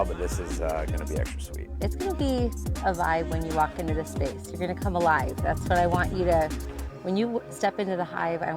but this is going to be extra sweet. It's going to be a vibe when you walk into this space. You're going to come alive. That's what I want you to, when you step into the Hive, I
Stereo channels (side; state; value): both; identical; correlation 1.00